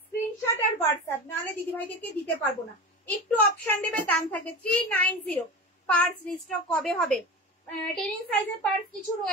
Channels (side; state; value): both; normal; correlation 0.29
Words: স্ক্রিনশট আর হোয়াটসঅ্যাপ, নাহলে দিদিভাইদেরকে দিতে পারবো না। একটু অপশন দেবে, দাম থাকবে 390। পার্স রিস্টক কবে হবে? 10 ইঞ্চ সাইজের পার্স কিছু